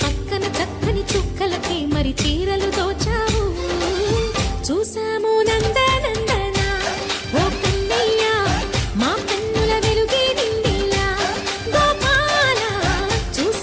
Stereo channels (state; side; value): identical; both; correlation 1.00